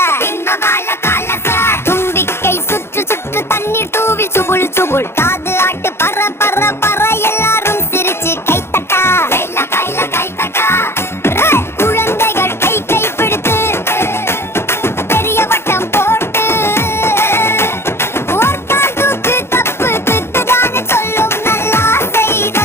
இன்பபால காலச தும்பிக்கை சுற்று சுற்று தண்ணீர் தூவி சுபுள் சுபுள் காது ஆட்டு பற பற பற எல்லாரும் சிரிச்சு கைத்தட்டா கைல கைல கைத்தட்டா குழந்தைகள் கை கை பிடித்து பெரிய வட்டம் போட்டு ஓர்கால் தூக்கு தப்பு திட்டுதானே சொல்லும் நல்லா செய்த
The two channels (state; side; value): late; right; 0.12 ms